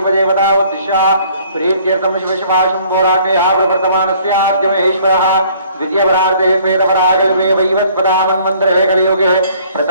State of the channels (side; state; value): both; inverted; correlation -0.58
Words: ఉద్దిశ్య ప్రీత్యర్థం శివ శివాశంభోరాటే ఆప్రవర్తమానస్యాద్యమేశ్వరः ద్వితీయపరార్ధే శ్వేతపరాగల్పే వైవస్పదామన్వంతరే కలియుగే